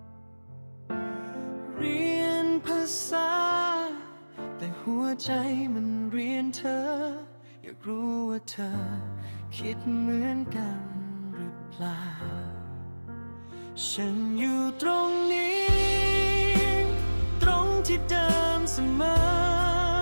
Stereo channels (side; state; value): both; inverted; correlation -1.00